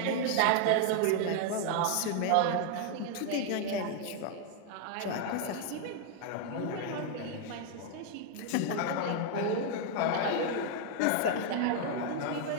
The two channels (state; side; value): different; both; correlation 0.00